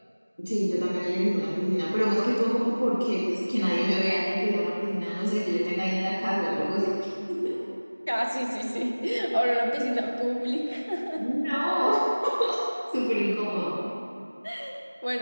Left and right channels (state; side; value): inverted; both; correlation -1.00